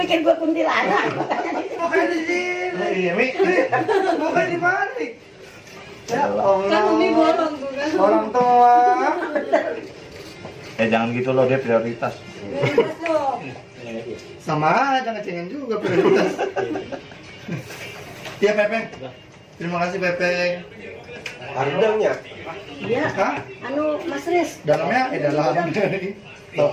gue kuntilanak? Mukanya di sini. Iya, Mi. Mukanya di balik. Ya Allah. Kan Umi bolong tuh kan. Orang tua. Jangan gitu loh, dia prioritas. Prioritas dong. Sama aja ngecengin juga prioritas. Iya Pepeng. Terima kasih Pepeng. Harganya? Iya. Hah? Anu Mas Riz. Dalamnya dalam dari. Tahu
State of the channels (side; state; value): both; identical; correlation 1.00